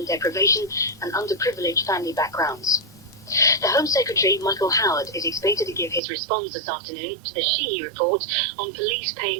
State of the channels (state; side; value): drops out; left; at 6.0 s